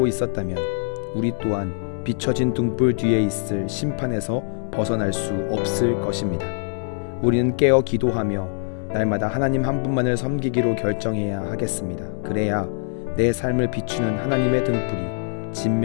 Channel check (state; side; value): silent; right; digital silence